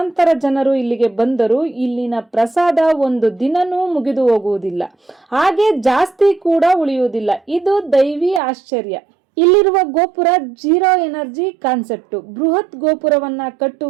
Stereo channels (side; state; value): left; drops out; at 8.4 s